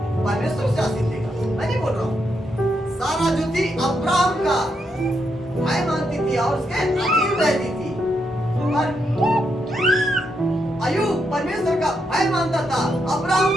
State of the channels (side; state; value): both; normal; correlation 0.81